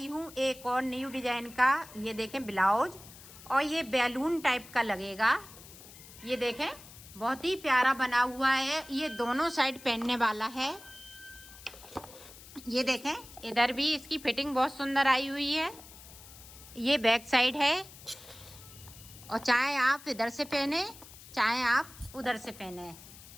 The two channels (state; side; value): noise; left; hiss, 18 dB below the sound